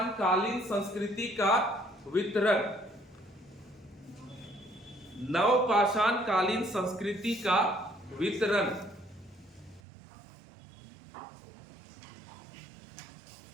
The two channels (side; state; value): left; drops out; at 9.8 s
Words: कालीन संस्कृति का वितरण, नवपाषाण कालीन संस्कृति का वितरण।